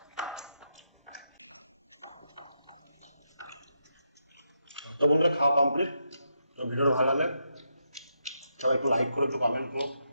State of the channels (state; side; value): inverted; both; correlation -0.82